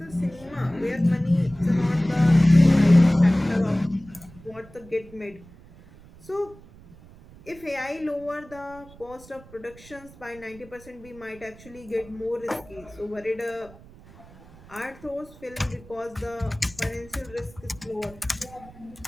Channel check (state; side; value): noise; right; rumble, 22 dB below the sound